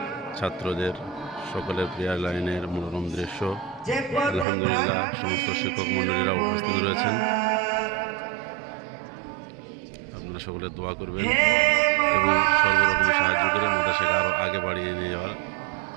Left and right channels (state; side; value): drops out; left; at 4.5 s